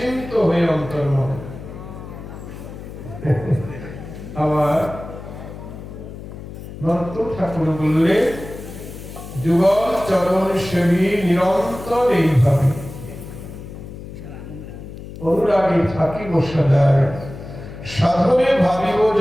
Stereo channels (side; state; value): left; noise; hum, 12 dB below the sound